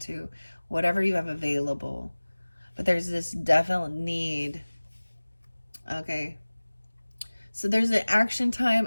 whatever you have available. But there's this definite need. Okay. So there's an action time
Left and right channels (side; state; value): both; inverted; correlation -1.00